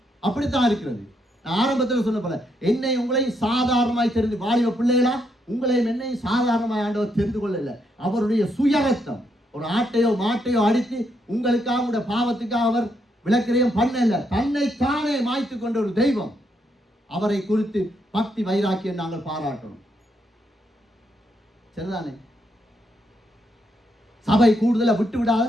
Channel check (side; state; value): both; normal; correlation 0.77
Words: அப்படித்தான் இருக்கிறது. நான் ஆரம்பத்தில் சொன்ன போல என்னை உங்களையும் சாதாரணமாய் தெரிந்து, வாலிப பிள்ளைகளா உங்களையும் என்னையும் சாதாரணமாய் ஆண்டவர் தெரிந்து கொள்ளல. அவருடைய சுயரத்தம், ஒரு ஆட்டையோ மாட்டையோ அடித்து உங்களுக்காக உங்களுடைய பாவத்துக்காக அவர் விளக்கிறையும் பண்ணல. தன்னை தானே மாய்த்து கொண்ட ஒரு தெய்வம். அவரை குறித்து பக்தி வைராக்கியம் நாங்கள் பாராட்டணும். சரிதானே? சபை கூடுதலை விட்டு